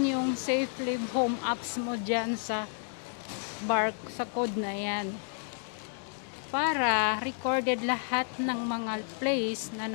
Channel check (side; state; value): right; silent; 57 dB below the other